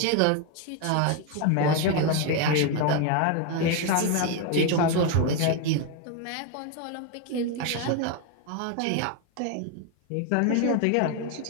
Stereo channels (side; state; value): both; different; correlation 0.02